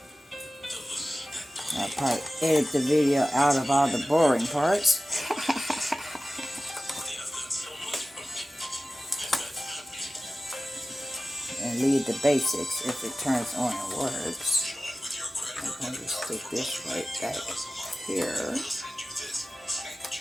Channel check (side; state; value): both; normal; correlation 0.95